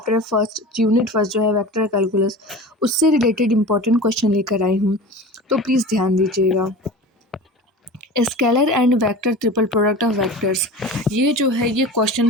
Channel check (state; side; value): normal; both; correlation 0.34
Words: फर्स्ट यूनिट फर्स्ट जो है वेक्टर कैलकुलस उससे रिलेटेड इम्पोर्टेंट क्वेश्चन लेकर आई हूँ, तो प्लीज़ ध्यान दीजिएगा। Scalar and vector triple product of vectors, ये जो है ये